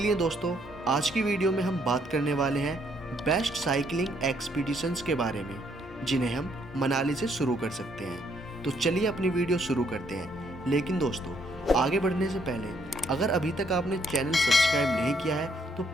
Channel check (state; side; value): normal; both; correlation 0.70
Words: दोस्तों, आज की वीडियो में हम बात करने वाले हैं बेस्ट साइकिलिंग एक्सपीडिशंस के बारे में, जिन्हें हम मनाली से शुरू कर सकते हैं। तो चलिए अपनी वीडियो शुरू करते हैं। लेकिन दोस्तों, आगे बढ़ने से पहले अगर अभी तक आपने चैनल सब्सक्राइब नहीं किया है तो